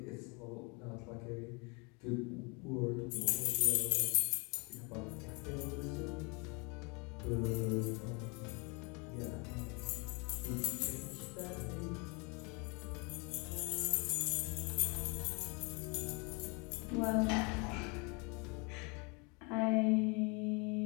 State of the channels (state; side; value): quieter; right; 31.1 dB